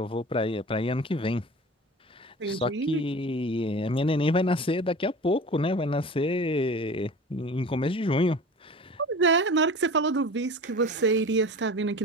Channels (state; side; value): normal; both; correlation 0.38